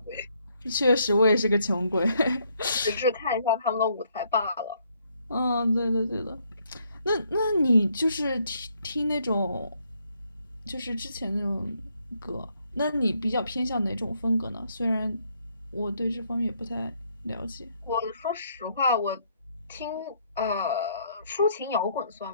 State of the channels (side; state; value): both; inverted; correlation -0.70